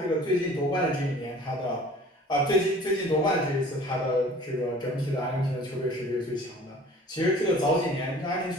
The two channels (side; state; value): both; normal; correlation 0.48